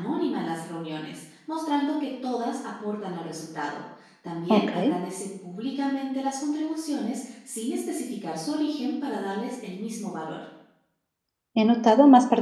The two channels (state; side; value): identical; both; correlation 1.00